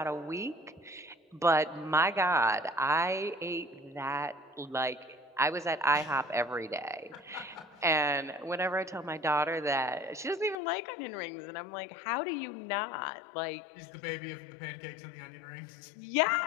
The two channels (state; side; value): drops out; right; at 10.6 s